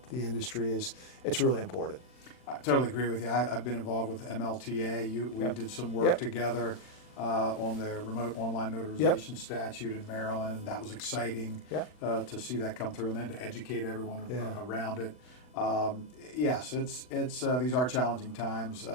the industry it's really important. I totally agree with you. I've been involved with MLTA. We did some work together on the remote online notarization statute in Maryland. That was exciting to see that come through, and then to educate everyone around it. Yes, it's these are challenging times.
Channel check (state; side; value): late; right; 40 ms